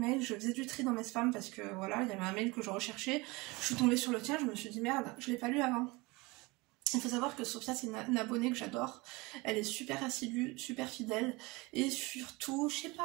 je faisais du tri dans mes spams parce que voilà, il y avait un mail que je recherchais. Je suis tombée sur le tien, je me suis dit merde, je l'ai pas lu avant. Il faut savoir que Sophia c'est une abonnée que j'adore, elle est super assidue, super fidèle et surtout, je sais pas,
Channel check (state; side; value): quieter; left; 24.1 dB